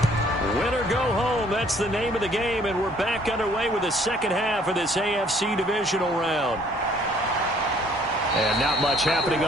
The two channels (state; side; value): normal; both; correlation 0.60